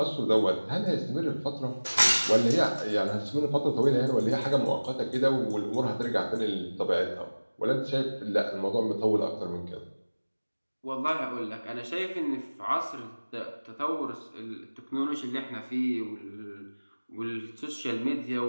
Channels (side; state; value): both; inverted; correlation -1.00